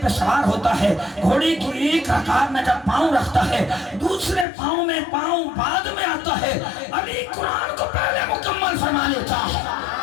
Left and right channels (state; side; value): drops out; right; at 4.5 s